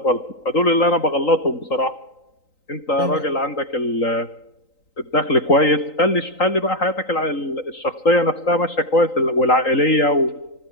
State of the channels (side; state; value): right; late; 3.9 ms